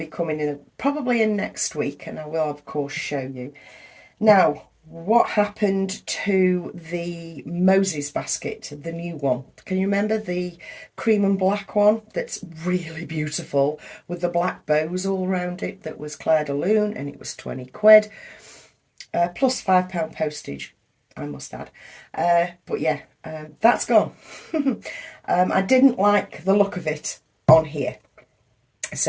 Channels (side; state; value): both; identical; correlation 1.00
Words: coming in probably in next week, and I will of course show you. Now, what happened to the Moses basket, the new one? Can you remember the cream and black one that's really beautiful with the black bows all around it? That was Claire de Lune, and it was 20 quid plus £5 postage, I must add. But yeah, that's gone. I didn't like the look of it on here,